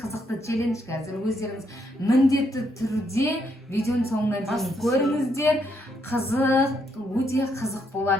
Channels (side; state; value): both; normal; correlation 0.75